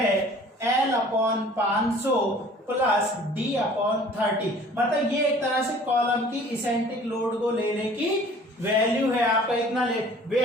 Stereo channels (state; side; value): normal; both; correlation 0.50